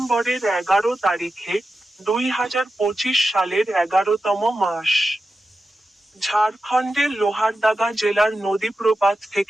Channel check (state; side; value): normal; both; correlation 0.91